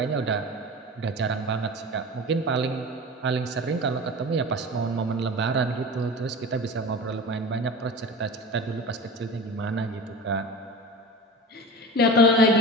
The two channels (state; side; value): normal; both; correlation 0.33